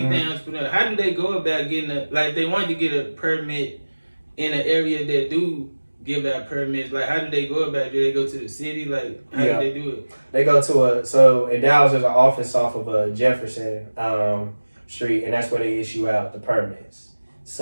entrepreneur, how do they go about getting like they want to get a permit in an area that do give out permits? Like how do they go about it? Do they go to the city? Like how do they do it? They go to so in Dallas there's an office off of Jefferson Street, and that's where they issue out the permits.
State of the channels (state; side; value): inverted; both; correlation -1.00